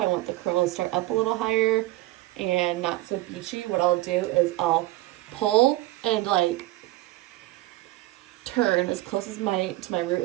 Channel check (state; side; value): quieter; left; 17.5 dB